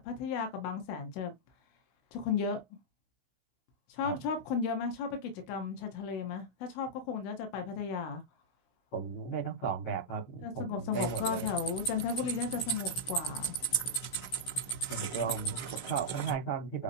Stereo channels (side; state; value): right; late; 16 ms